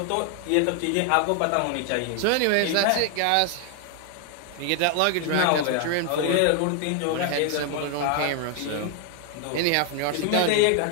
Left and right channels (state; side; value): different; both; correlation 0.00